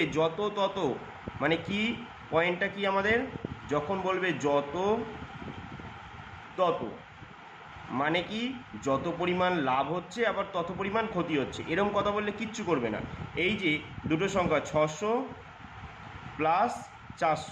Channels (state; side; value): identical; both; correlation 1.00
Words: যত তত, মানে কি পয়েন্টটা কি আমাদের? যখন বলবে যত তত মানে কি যত পরিমাণ লাভ হচ্ছে আবার তত পরিমাণ ক্ষতি হচ্ছে, এরকম কথা বললে কিচ্ছু করবে না। এই যে দুটো সংখ্যা 600 প্লাস